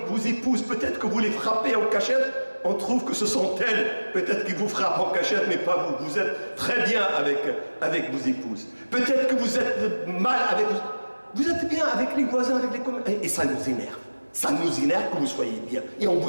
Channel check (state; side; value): inverted; both; correlation -1.00